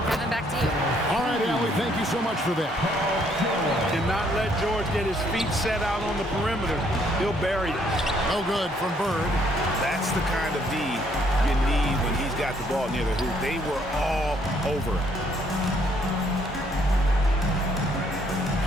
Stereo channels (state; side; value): normal; both; correlation 0.67